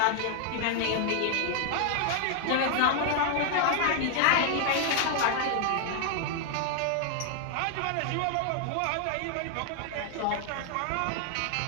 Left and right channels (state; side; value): different; both; correlation 0.00